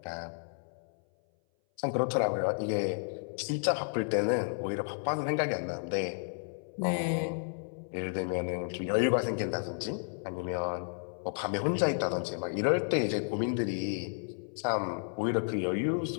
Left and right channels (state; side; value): silent; right; 56 dB below the other